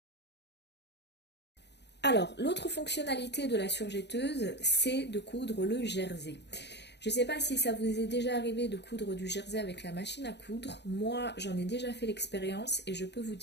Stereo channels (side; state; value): right; late; 0.50 ms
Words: Alors, l'autre fonctionnalité de la surjetteuse, c'est de coudre le jersey. Je ne sais pas si ça vous est déjà arrivé de coudre du jersey avec la machine à coudre. Moi, j'en ai déjà fait l'expérience et je peux vous